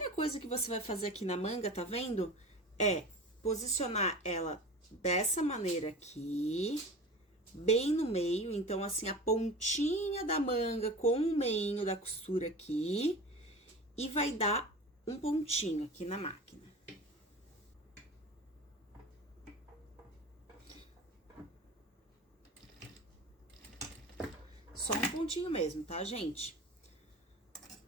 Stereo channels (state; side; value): normal; both; correlation 0.34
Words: coisa que você vai fazer aqui na manga, tá vendo? É posicionar ela dessa maneira aqui, bem no meio, então, assim, a pontinha da manga com o meinho da costura aqui, e vai dar um pontinho aqui na máquina. Só um pontinho mesmo, tá, gente?